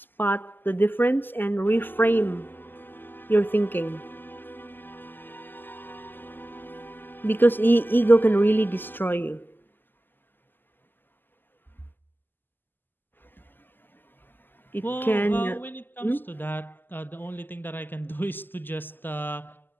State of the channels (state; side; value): late; right; 0.091 ms